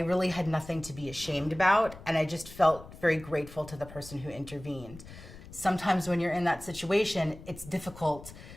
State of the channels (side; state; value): left; noise; rumble, 17 dB below the sound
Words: had nothing to be ashamed about, and I just felt very grateful to the person who intervened. Sometimes when you're in that situation, it's difficult